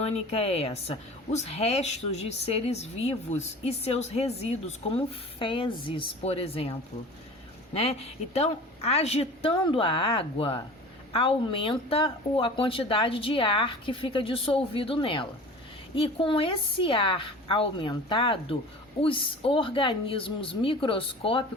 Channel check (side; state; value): both; normal; correlation 0.39